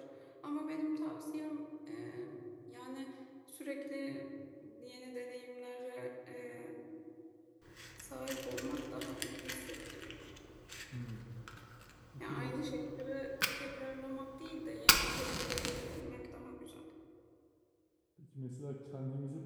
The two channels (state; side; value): identical; both; correlation 1.00